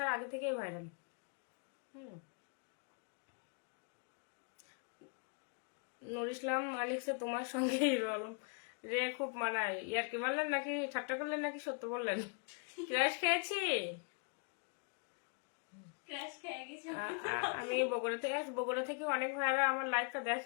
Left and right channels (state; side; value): quieter; right; 38.5 dB